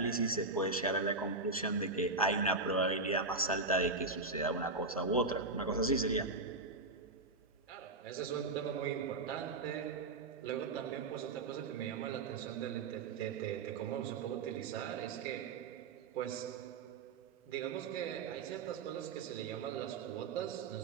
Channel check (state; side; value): quieter; left; 3.6 dB